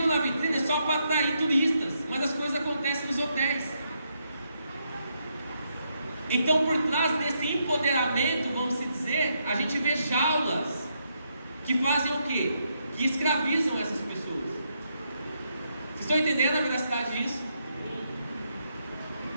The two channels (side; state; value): both; inverted; correlation -0.79